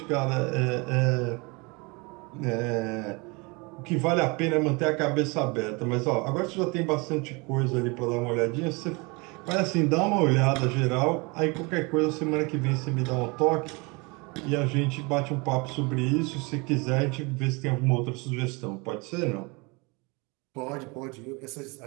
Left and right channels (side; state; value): left; quieter; 28.1 dB